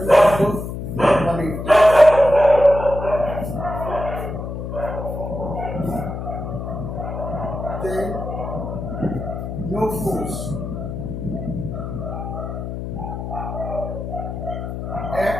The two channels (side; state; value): left; noise; hum, 6 dB below the sound